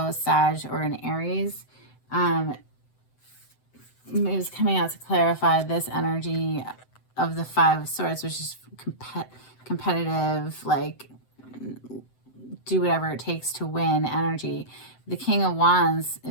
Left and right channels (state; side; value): late; right; 7.8 ms